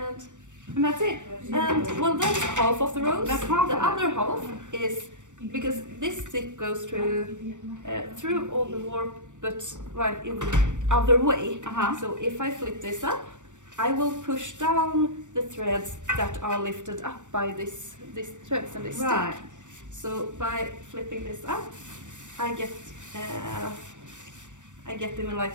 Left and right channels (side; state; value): left; late; 0.85 ms